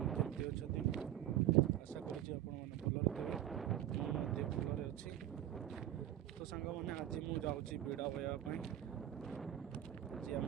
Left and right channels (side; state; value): left; quieter; 12.3 dB